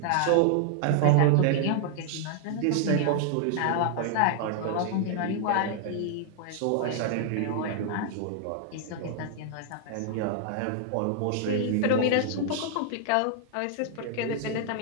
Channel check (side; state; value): both; different; correlation 0.00